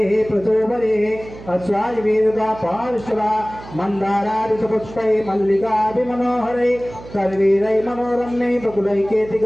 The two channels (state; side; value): noise; right; hum, 16 dB below the sound